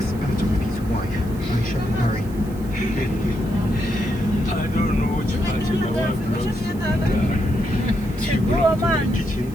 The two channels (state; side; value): noise; right; hiss, 23 dB below the sound